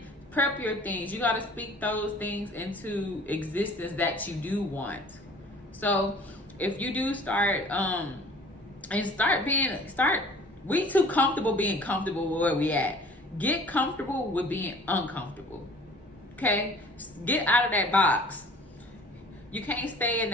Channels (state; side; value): normal; both; correlation 0.49